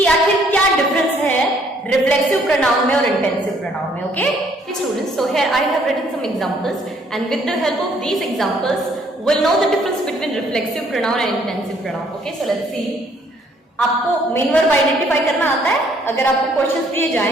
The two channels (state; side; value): normal; both; correlation 0.64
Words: आखिर क्या डिफरेंस है रिफ्लेक्सिव प्रोनाउन में और इंटेंसिव प्रोनाउन में। Okay students, so here I have written some examples and with the help of these examples we'll know the difference between reflexive pronoun and intensive pronoun. Okay, so let's see. आपको main verb identify करना आता है? अगर आपको questions दिए